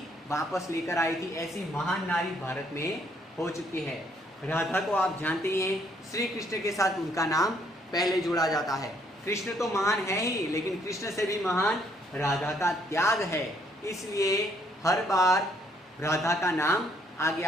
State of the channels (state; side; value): normal; both; correlation 0.68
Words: वापस लेकर आई थी, ऐसी महान नारी भारत में हो चुकी है। राधा को आप जानते ही हैं, श्री कृष्ण के साथ उनका नाम पहले जोड़ा जाता है। कृष्ण तो महान है ही, लेकिन कृष्ण से भी महान राधा का त्याग है, इसलिए हर बार राधा का नाम आगे